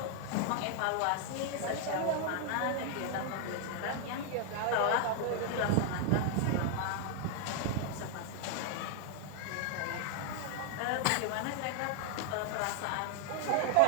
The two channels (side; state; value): both; different; correlation 0.00